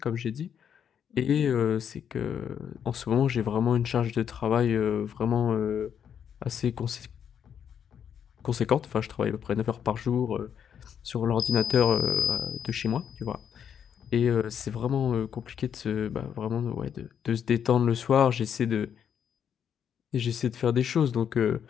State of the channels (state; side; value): quieter; right; 8.3 dB